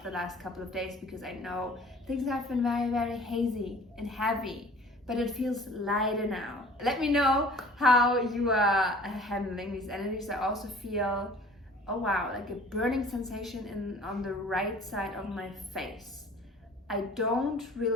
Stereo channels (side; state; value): both; normal; correlation 0.48